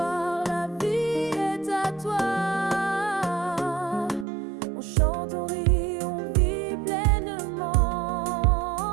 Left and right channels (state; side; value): drops out; left; at 4.2 s